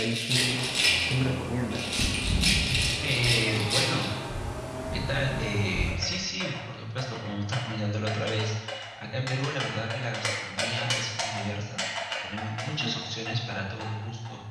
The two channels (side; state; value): both; identical; correlation 1.00